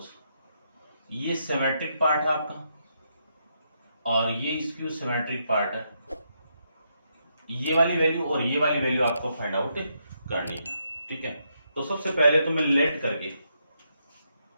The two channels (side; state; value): both; inverted; correlation -0.79